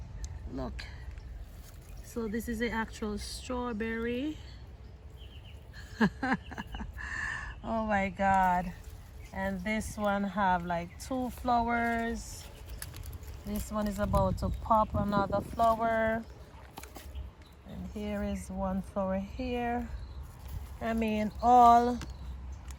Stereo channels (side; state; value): both; identical; correlation 1.00